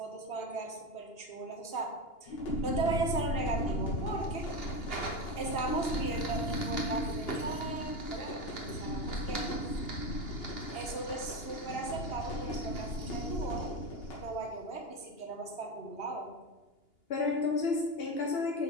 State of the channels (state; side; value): late; right; 2.8 ms